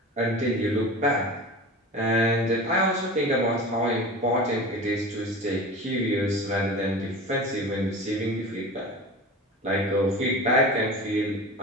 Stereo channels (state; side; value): normal; both; correlation 0.34